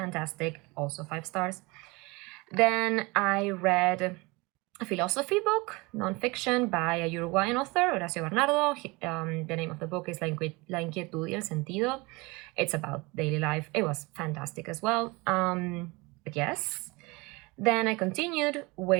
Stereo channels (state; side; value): quieter; left; 25.0 dB